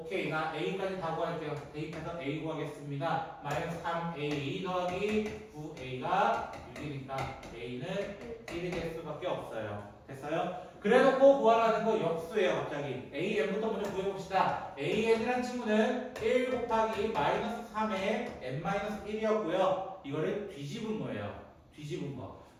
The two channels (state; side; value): identical; both; correlation 1.00